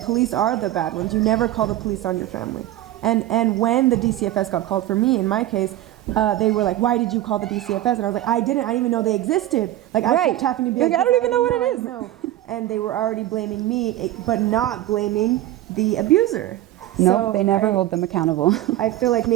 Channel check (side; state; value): left; quieter; 14.4 dB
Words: are the bad ones. You never call the police on your family. And when the DCFS got called for me, in my case, they were like, "Why did you call the DCFS?" And I was like, "I didn't even know they existed." Like I Right. kept having to be Like, like, I don't "Yes, even know what I it is." know." And they were already blaming me, but not blaming the abuser. No, So they never hold them accountable. I feel like